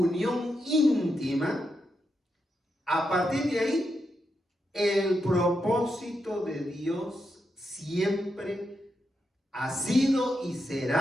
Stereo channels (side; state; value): both; normal; correlation 0.85